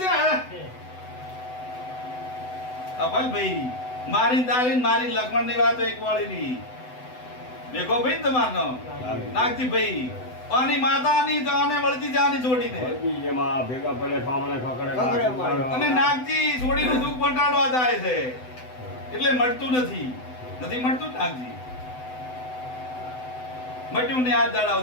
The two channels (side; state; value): right; late; 7.9 ms